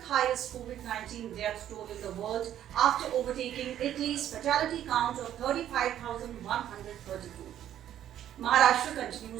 highest COVID-19 death toll in the world after overtaking Italy's fatality count of 35,132. Maharashtra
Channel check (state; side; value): quieter; left; 11.2 dB